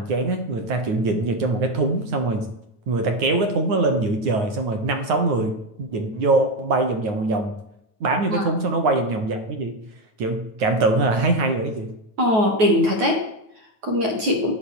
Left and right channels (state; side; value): late; left; 9.6 ms